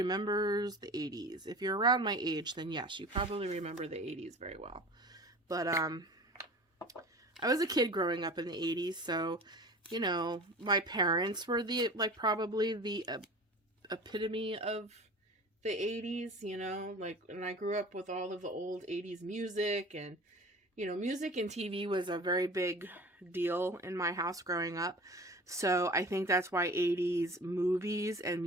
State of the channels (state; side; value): normal; both; correlation 0.39